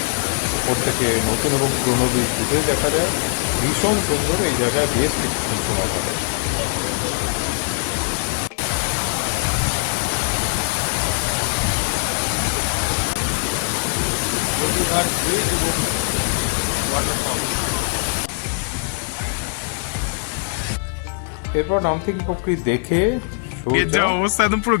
উপর থেকে নতুন এবং পুরনো ব্রিজ দুটোই দেখা যায়। ভীষণ সুন্দর, এই জায়গায় বেশ কিছুক্ষণ সময় কাটে। এরপর নামথিং পুকুরি দেখে যা অবস্থা, একদম পুরো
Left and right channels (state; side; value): silent; right; 56 dB below the other